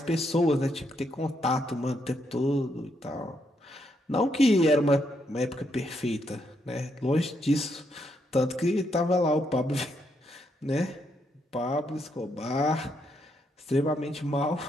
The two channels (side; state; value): both; normal; correlation 0.77